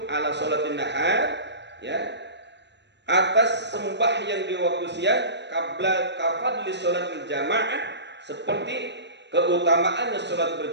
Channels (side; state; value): left; late; 0.51 ms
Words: ala sholatin nahar, ya, atas sembahyang di waktu siang, qabla kafadli sholatil jamaah, seperti keutamaannya sholat